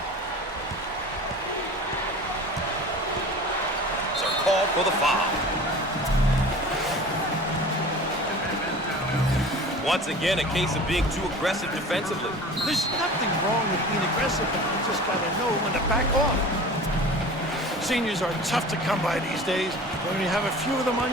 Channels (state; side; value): normal; both; correlation 0.39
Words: Called for the foul. Once again, a case of being too aggressive defensively. There's nothing wrong with being aggressive, but you just got to know when to back off. Seniors are tough to come by these days. When you have a few of them on